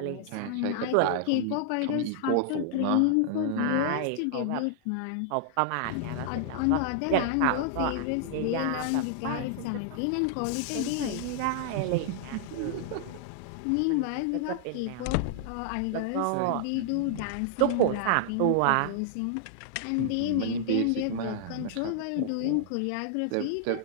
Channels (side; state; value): both; different; correlation -0.01